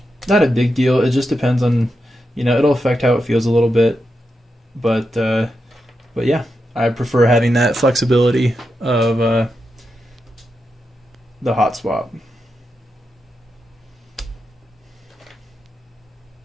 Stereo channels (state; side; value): normal; both; correlation 0.87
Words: a big deal. It just depends on, you know, it'll affect how it feels a little bit, but yeah, I prefer having that flexibility of the hot swap.